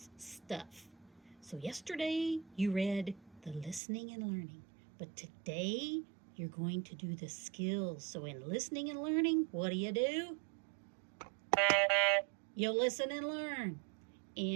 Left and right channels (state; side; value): drops out; left; at 3.8 s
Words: Stuff. So, yesterday you read the listening and learning, but today you're going to do the skills. So, in listening and learning, what do? You listen and learn.